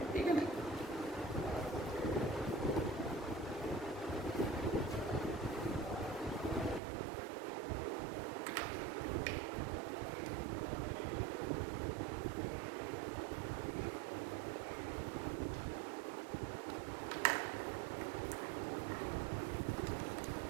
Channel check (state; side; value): drops out; left; at 6.8 s